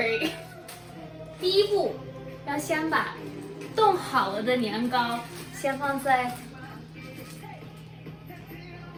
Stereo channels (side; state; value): both; identical; correlation 1.00